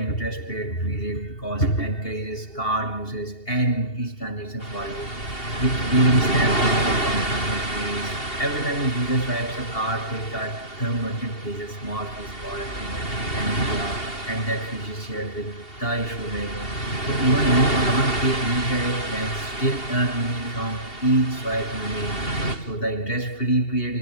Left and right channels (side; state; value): right; late; 2.7 ms